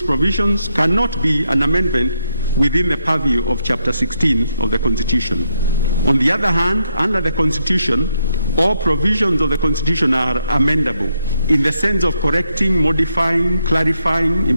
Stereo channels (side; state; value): both; inverted; correlation -0.79